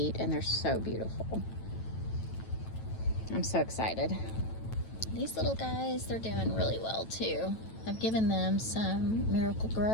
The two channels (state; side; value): late; right; 9.1 ms